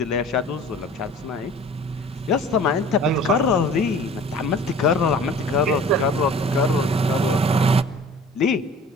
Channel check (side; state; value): both; normal; correlation 0.46